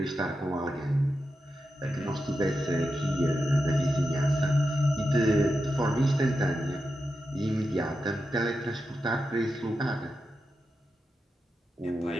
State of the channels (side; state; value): both; normal; correlation 0.89